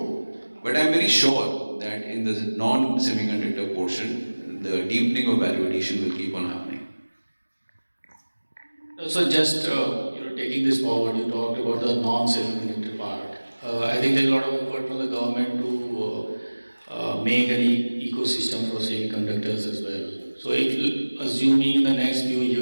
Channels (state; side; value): inverted; both; correlation -1.00